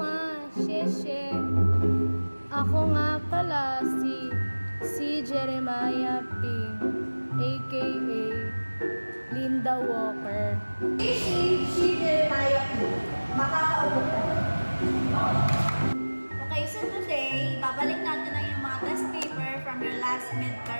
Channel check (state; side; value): inverted; both; correlation -1.00